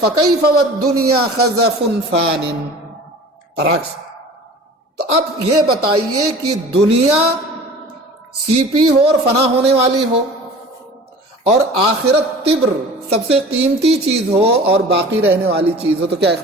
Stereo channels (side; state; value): both; normal; correlation 0.42